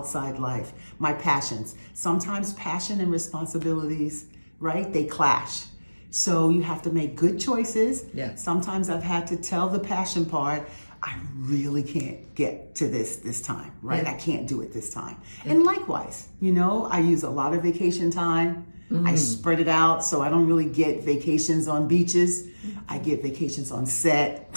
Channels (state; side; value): inverted; both; correlation -1.00